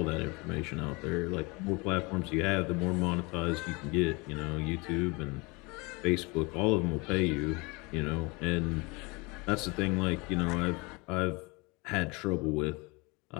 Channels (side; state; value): right; quieter; 26.9 dB